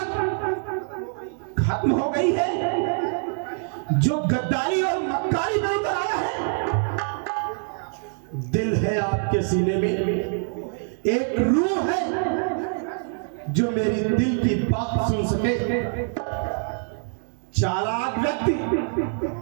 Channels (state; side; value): silent; left; 57 dB below the other